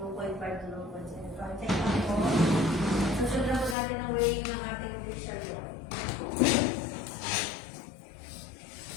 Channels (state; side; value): drops out; right; at 3.8 s